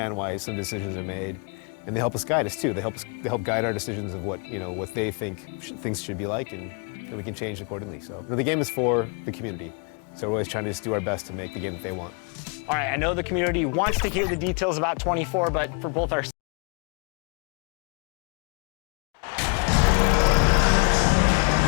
why some decisions are made, and they help us guide us too. They help guide our decisions of what they think things should be like, and we can change accordingly. So the game is for the community, so we're always trying to just do our best to make the game that they want. All right, I know the community wants to hear the details about 24, but for both our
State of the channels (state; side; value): quieter; right; 36.1 dB